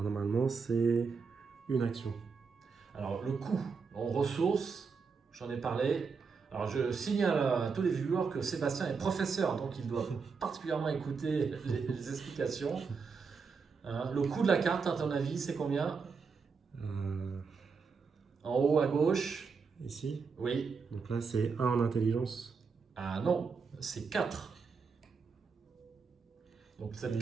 normalement, c'est une action. Alors le coût en ressources, j'en ai parlé. Alors je signale à tous les viewers que Sébastien est professeur, donc il doit particulièrement écouter les explications. Hein, le coût de la carte, à ton avis, c'est combien? En haut à gauche? Ici? Oui. Donc là, c'est 1 en intelligence. Ah non, c'est 4. Donc cette Oui,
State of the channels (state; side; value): quieter; left; 5.2 dB